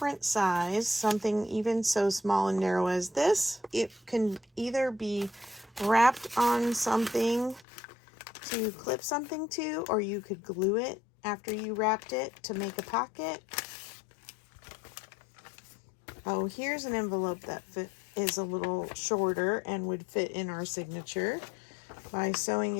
size, something even so small and narrow as this. It can either be wrapped on something to clip something to, or you could glue it after you wrapped it to make a pocket. Oh, here's an envelope that is a little shorter and would fit in our signature by sewing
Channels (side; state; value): right; drops out; at 7.7 s